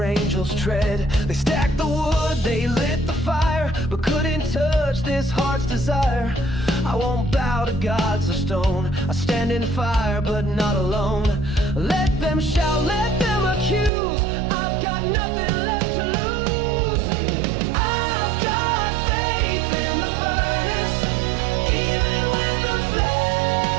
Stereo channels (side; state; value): left; drops out; at 13.9 s